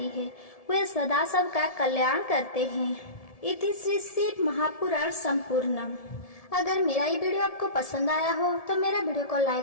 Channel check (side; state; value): right; late; 1.7 ms